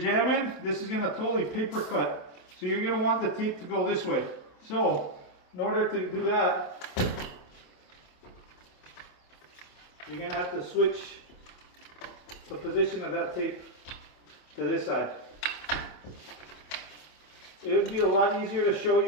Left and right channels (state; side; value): late; right; 27 ms